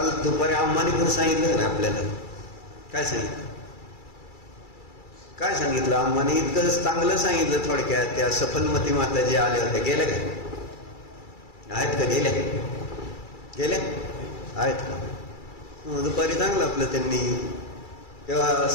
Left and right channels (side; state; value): right; late; 2.3 ms